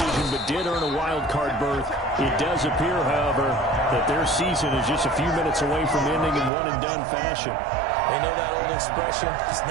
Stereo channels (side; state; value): left; drops out; at 6.5 s